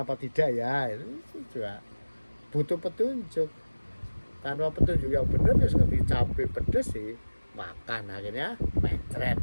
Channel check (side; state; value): both; inverted; correlation -1.00